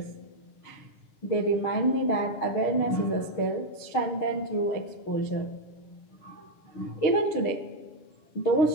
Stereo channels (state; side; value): late; right; 6.5 ms